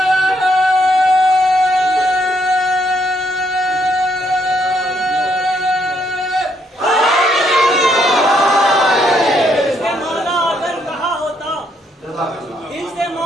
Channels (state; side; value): normal; both; correlation 0.73